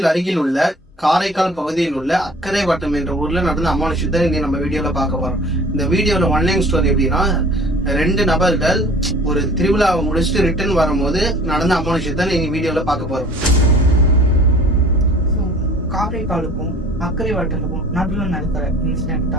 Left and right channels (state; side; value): normal; both; correlation 0.47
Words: அருகில் உள்ள காரைக்கால் பகுதியில் உள்ள அக்கரை வட்டம் என்ற ஊர்ல நடந்த அமானுஷத்தை இன்னைக்கு நம்ம வீடியோல பார்க்க போறோம். இந்த வீடியோல ஒன்லைன் ஸ்டோரி எப்படின்னா, 2 நபர்கள் ஒரு திருவிழாவை முடிச்சுட்டு ரிட்டர்ன் வரும்போது நடந்த அமானுஷத்தை நீங்க வீடியோல பார்க்க போறோம். காரைக்காலுக்கும் அக்கரை வட்டத்துக்கும் நடுவில் நடக்கிற இன்சிடென்ட்